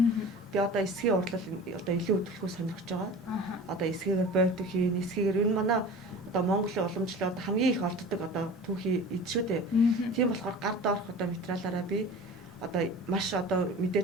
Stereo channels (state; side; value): normal; both; correlation 0.38